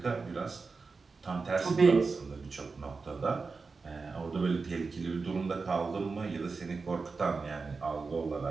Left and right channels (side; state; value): left; quieter; 4.4 dB